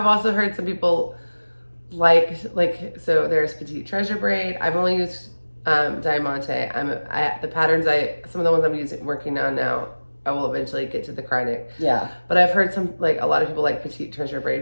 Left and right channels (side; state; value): both; inverted; correlation -1.00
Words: also heard some people so there's Petite Treasure Braid. I've only used Diamante. The patterns some of the ones I'm working on now, I will eventually get to the Krynic. Yeah. But I've heard a lot of people like Petite Treasure